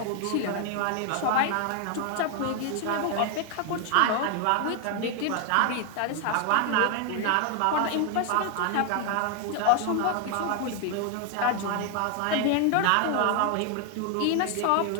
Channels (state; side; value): different; both; correlation 0.00